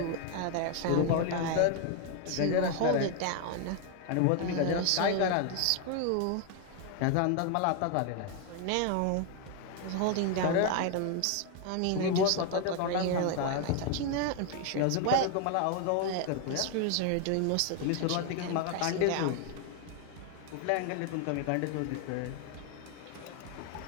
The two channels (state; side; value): different; both; correlation 0.01